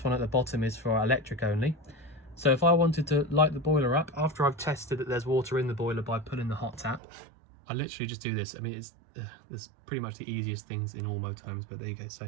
one at the bottom is for electric only. So if I wanted to light the boiler up, after I've tested that there's water in the boiler by pulling the hot tap, I literally just do this. I mean, it's pretty much the easiest things in all motorhomes, but there you go.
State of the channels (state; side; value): drops out; left; at 7.0 s